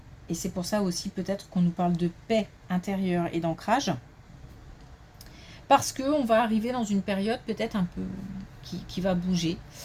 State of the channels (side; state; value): both; identical; correlation 1.00